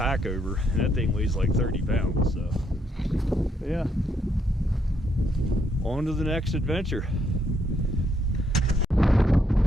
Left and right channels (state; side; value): normal; both; correlation 0.74